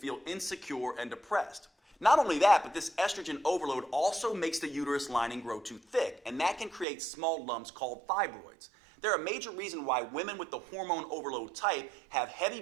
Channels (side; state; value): left; drops out; at 6.9 s